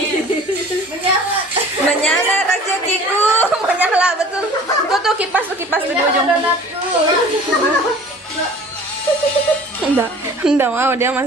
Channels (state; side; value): normal; both; correlation 0.46